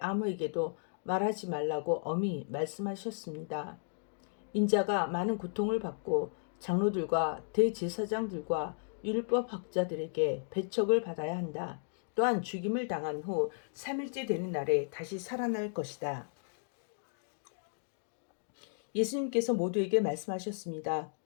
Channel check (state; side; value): silent; right; digital silence